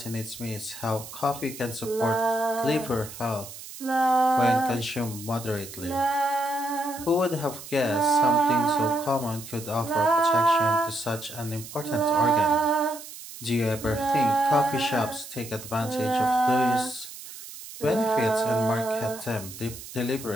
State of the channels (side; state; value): right; noise; hiss, 14 dB below the sound